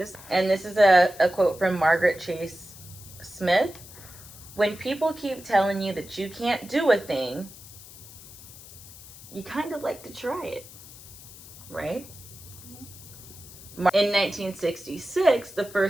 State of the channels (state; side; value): noise; left; hiss, 18 dB below the sound